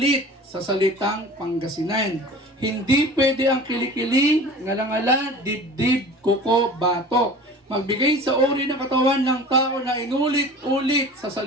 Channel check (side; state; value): both; normal; correlation 0.40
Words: sa salitang Pangasinan. Hindi pwede ang kilikili, ngala-ngala, dibdib, kuko, bato. Magbigay sa uri ng katawan ng tao na inulit-ulit sa